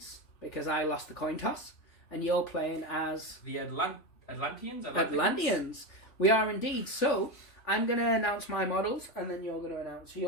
because I lost the coin toss and you're playing as... The Atlanteans? Atlanteans. We are indeed. So... I'm going to announce my models, and then you're going to announce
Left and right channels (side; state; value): right; late; 3.4 ms